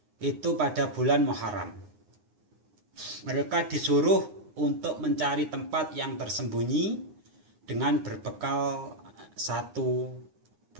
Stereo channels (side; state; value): left; late; 9.7 ms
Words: itu pada bulan Muharram. Mereka disuruh untuk mencari tempat yang tersembunyi dengan berbekal satu